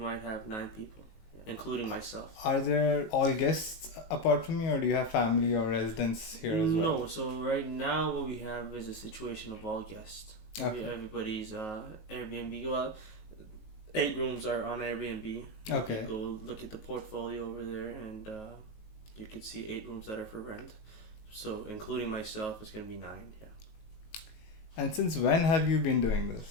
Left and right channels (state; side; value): late; right; 19 ms